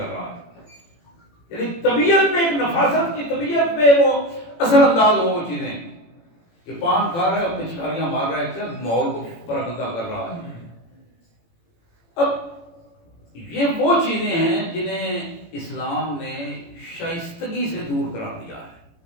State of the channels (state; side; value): late; right; 18 ms